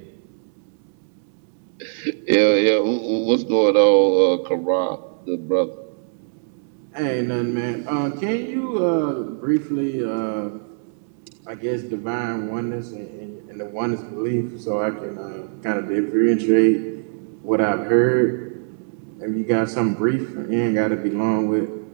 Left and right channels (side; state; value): left; silent; digital silence